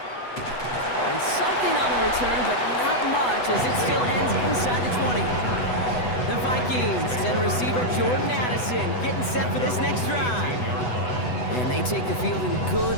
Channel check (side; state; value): right; late; 8.0 ms